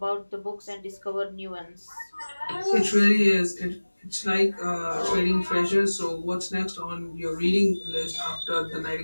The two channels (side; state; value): both; inverted; correlation -1.00